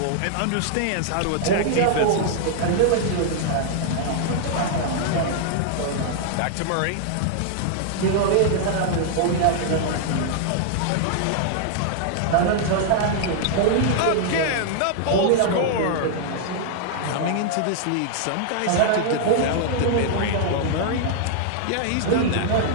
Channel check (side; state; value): both; different; correlation 0.00